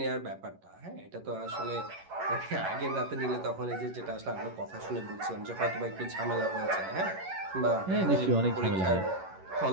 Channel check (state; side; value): late; left; 11 ms